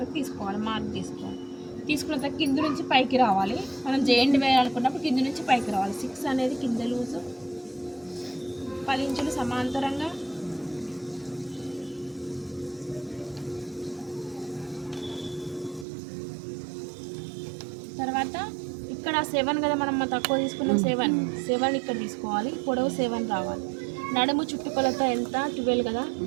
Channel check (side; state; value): left; drops out; at 15.9 s